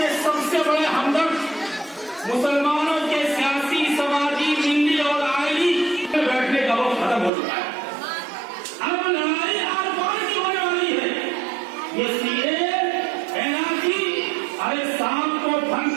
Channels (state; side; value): drops out; left; at 7.3 s